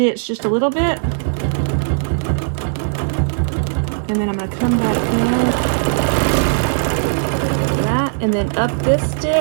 just a little bit, and then I'm going to come back down that, and then up this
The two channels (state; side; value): silent; left; digital silence